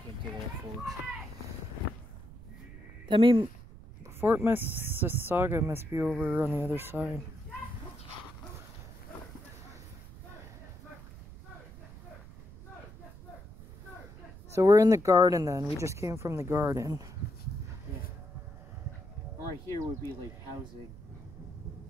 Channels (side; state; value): right; noise; rumble, 16 dB below the sound